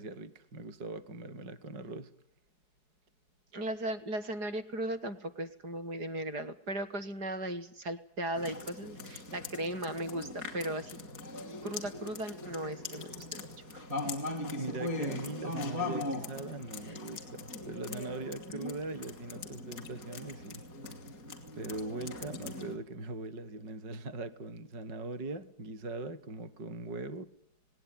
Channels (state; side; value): late; left; 4.7 ms